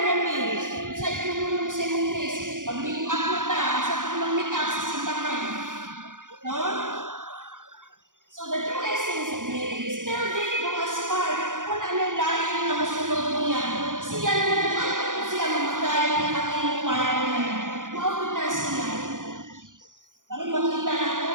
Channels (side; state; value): left; late; 0.88 ms